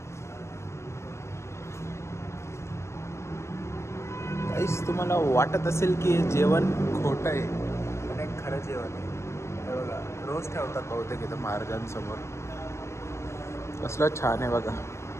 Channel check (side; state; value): right; late; 0.13 ms